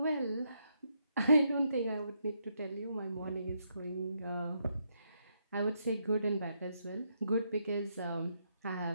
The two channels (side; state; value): both; inverted; correlation -0.78